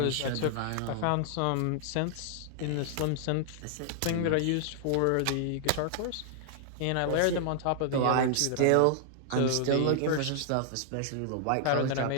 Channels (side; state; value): both; different; correlation -0.01